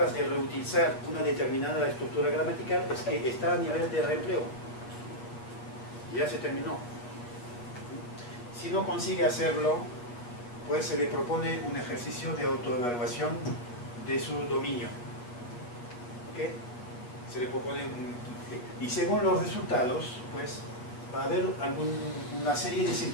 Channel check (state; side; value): late; right; 8.2 ms